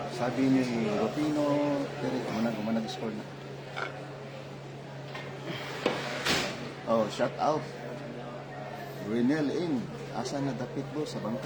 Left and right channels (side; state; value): both; identical; correlation 1.00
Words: Sabi ni Rufino, umanag-score na. Oh, shout out. Renel in. Asa na dapit mo sa